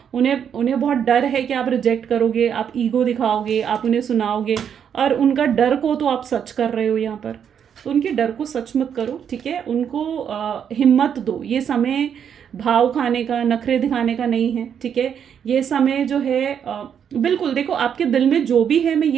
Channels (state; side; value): quieter; left; 8.2 dB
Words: उन्हें बहुत डर है कि आप रिजेक्ट करोगे, आप ईगो दिखाओगे, आप उन्हें सुनाओगे, और उनका डर को तो आप सच कर रहे हो यहाँ पर। तो उनके डर को सच मत करो, ठीक है। उनको हिम्मत दो। ये समय भाव खाने का, नखरे दिखाने का नहीं है, ठीक है। ये समय जो है बिल्कुल देखो, आपके दिल में जो भी है, मैं